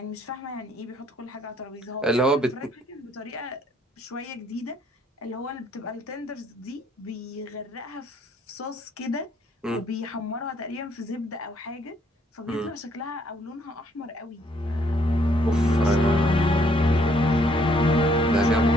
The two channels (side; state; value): both; normal; correlation 0.67